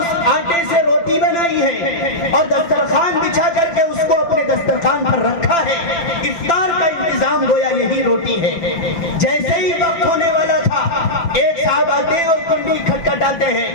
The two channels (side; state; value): right; late; 5.9 ms